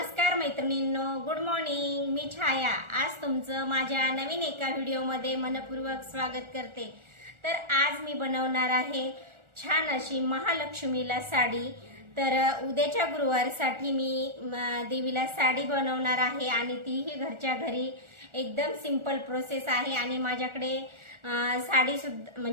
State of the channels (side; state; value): left; late; 1.4 ms